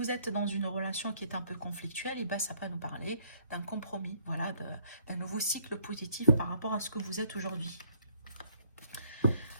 êtes dans une relation qui est un peu conflictuelle, et ben ça peut nous parler d'un compromis, voilà, d'un nouveau cycle positif par rapport à ce que vous êtes aujourd'hui.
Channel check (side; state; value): both; inverted; correlation -0.63